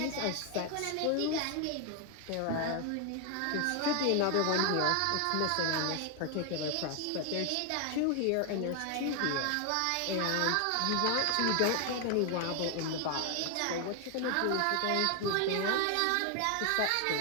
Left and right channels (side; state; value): both; different; correlation 0.00